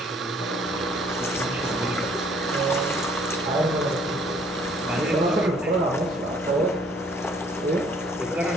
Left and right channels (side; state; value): both; normal; correlation 0.61